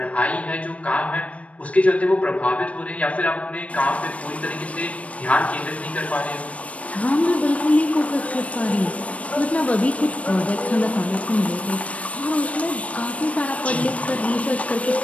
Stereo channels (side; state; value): right; late; 0.065 ms